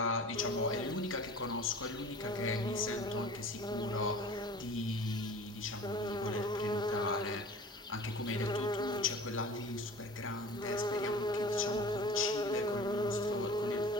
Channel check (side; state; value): both; normal; correlation 0.42